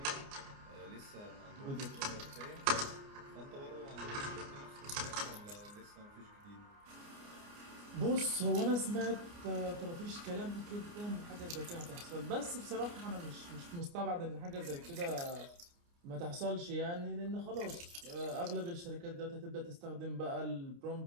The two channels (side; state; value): left; late; 29 ms